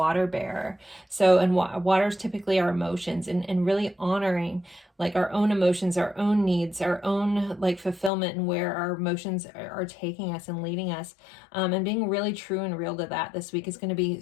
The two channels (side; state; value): right; drops out; at 8.1 s